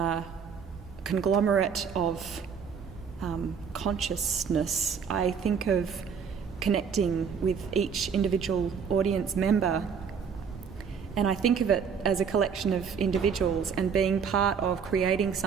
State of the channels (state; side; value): quieter; left; 6.6 dB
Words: conglomerate of consciousness. I think of connecting with each individual audience member, and I think of it as a collection of individuals and being part of creating